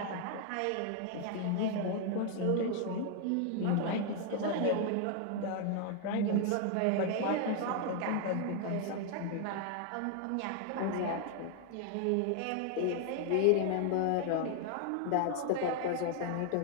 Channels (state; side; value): different; both; correlation 0.00